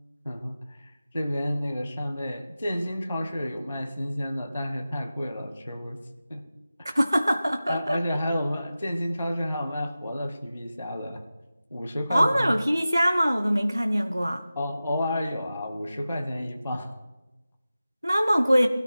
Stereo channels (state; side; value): inverted; both; correlation -0.95